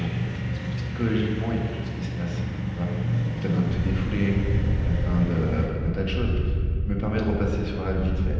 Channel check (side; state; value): both; identical; correlation 1.00